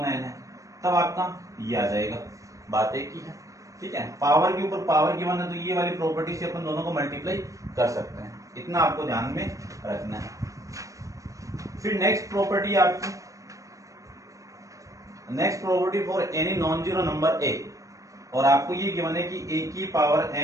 है, तब आपका ये आ जाएगा, बात एक ही है, ठीक है। पावर के ऊपर पावर गिवन है, तो ये वाली प्रॉपर्टी से अपन दोनों को मल्टीप्लाई कर सकते हैं, इतना आपको ध्यान में रखना है। फिर नेक्स्ट प्रॉपर्टी आपकी, next property for any non zero number a, और आपको ये गिवन है कि a की पावर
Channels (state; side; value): late; left; 0.16 ms